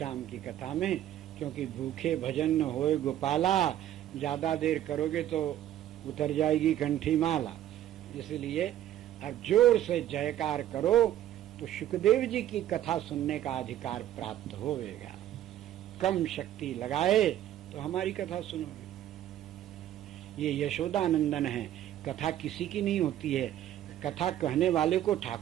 की कथा में, क्योंकि भूखे भजन न होए गोपाला, ज्यादा देर करोगे तो उतर जाएगी कंठी माला, इसलिए अब जोर से जयकार करो तो सुखदेव जी की कथा सुनने का अधिकार प्राप्त होगा। कम शक्ति लगाए तो हमारी कथा सुनोगे। ये यशोदानंदन है, कथा किसी की नहीं होती है, कथा कहने वाले को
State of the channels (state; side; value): quieter; left; 12.1 dB